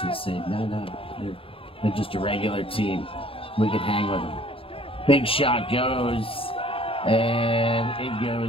say, no, they're just a regular team. We can hang with them. Big shot goes, and it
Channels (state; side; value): late; right; 0.27 ms